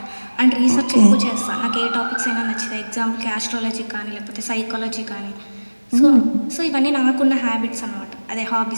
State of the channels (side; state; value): both; inverted; correlation -1.00